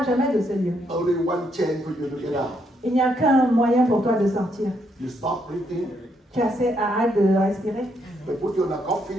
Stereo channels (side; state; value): both; normal; correlation 0.75